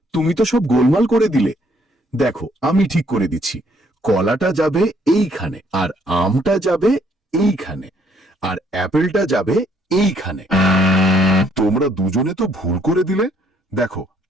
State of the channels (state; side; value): normal; both; correlation 0.66